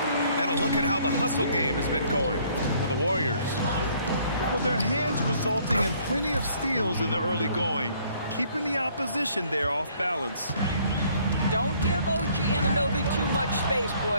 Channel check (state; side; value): inverted; both; correlation -0.62